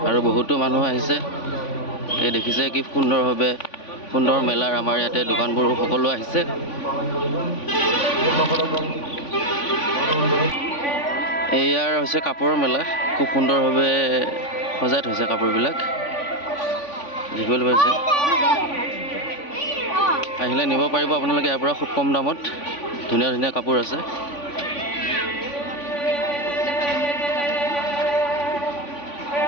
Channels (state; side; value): late; right; 3.5 ms